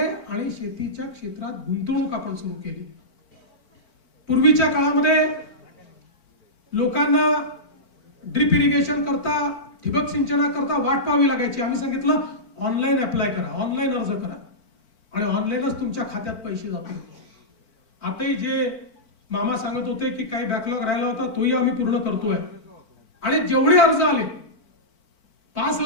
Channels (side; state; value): right; late; 4.5 ms